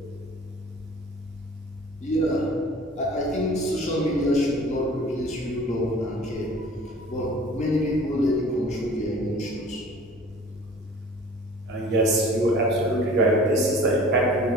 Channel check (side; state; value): both; normal; correlation 0.45